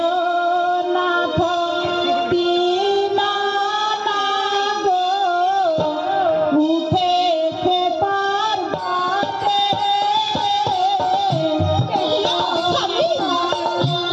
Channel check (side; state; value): both; identical; correlation 1.00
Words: নাথ দীনানাথ গো, উঠেছে পার্বতে।